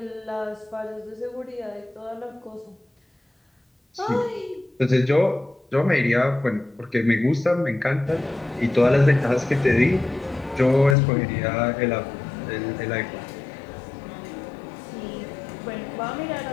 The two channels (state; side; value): drops out; right; at 11.0 s